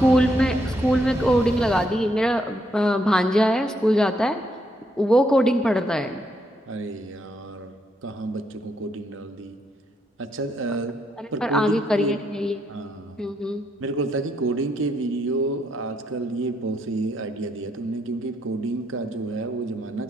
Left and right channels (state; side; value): normal; both; correlation 0.76